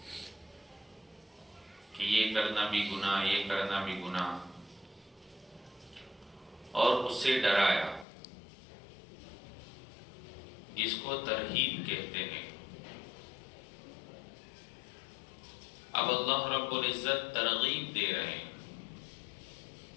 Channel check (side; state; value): right; drops out; at 8.1 s